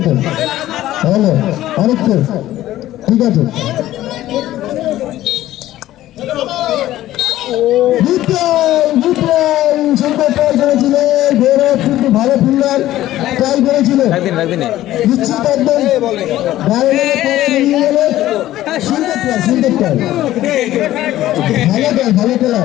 তো হ্যালো আরেকটু ঠিক আছে সুন্দর ট্রাই করেছিল গৌরব কিন্তু ভালো ফিল্ডার ট্রাই করেছিল রাখদিন নিশ্চিত একদম সুন্দর ট্রাই ভালো খেলা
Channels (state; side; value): quieter; right; 14.4 dB